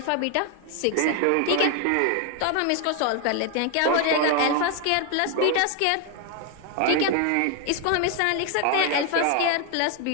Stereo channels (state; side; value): different; both; correlation 0.01